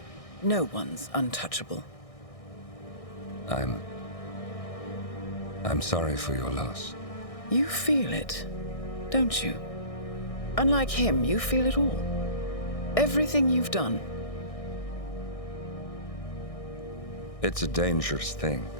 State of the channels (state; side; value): late; right; 1.6 ms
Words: no one's untouchable. I'm sorry for your loss. You feel it, don't you? Unlike him, you feel it all. Everything you've done. It's a dangerous thing.